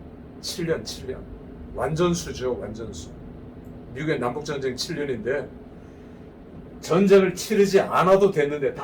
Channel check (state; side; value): identical; both; correlation 1.00